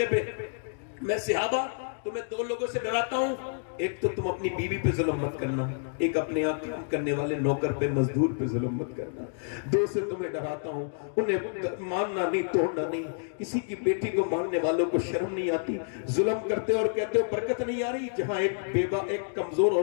पे, मैं सहाबा तुम्हें दो लोगों से डराता हूं, एक तो तुम अपनी बीवी पे जुल्म मत करना, एक अपने यहाँ काम करने वाले नौकर पे मजदूर पे जुल्म मत करना। दो से तुम्हें डराता हूं, उन्हें मारना नहीं, तोड़ना नहीं। किसी की बेटी को मारने वालों को शर्म नहीं आती, जुल्म करते और कहते हो बरकत नहीं आ रही। जहां एक बेवा, एक कमजोर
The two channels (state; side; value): silent; right; digital silence